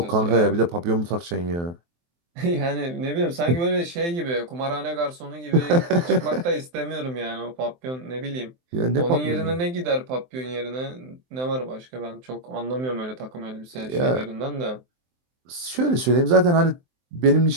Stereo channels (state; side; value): late; left; 23 ms